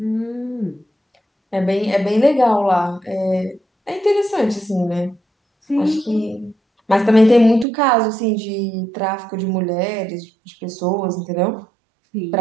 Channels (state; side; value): drops out; left; at 7.7 s